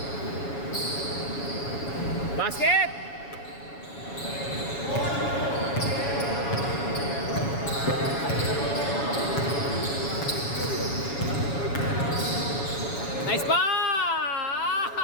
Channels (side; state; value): right; late; 7.1 ms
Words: Basket! Nice pa!